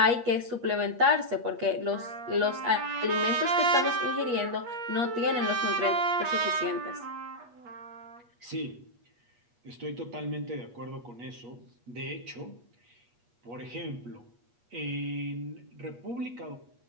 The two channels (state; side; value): late; left; 8.3 ms